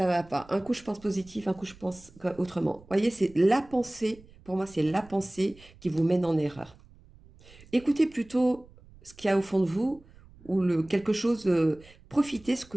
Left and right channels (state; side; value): noise; right; rumble, 24 dB below the sound